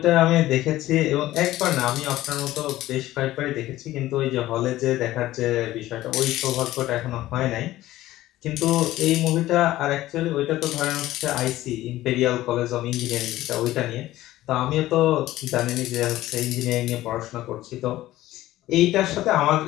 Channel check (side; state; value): right; quieter; 15.6 dB